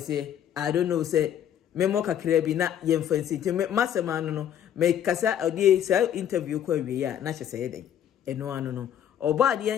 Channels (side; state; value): right; quieter; 9.9 dB